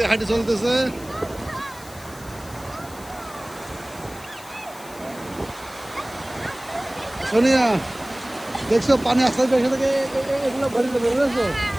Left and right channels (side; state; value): left; noise; hiss, 19 dB below the sound